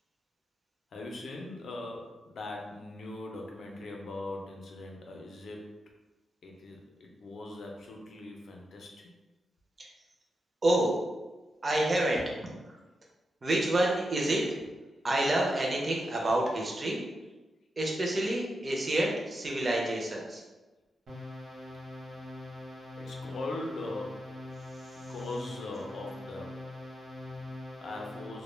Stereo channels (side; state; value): both; normal; correlation 0.87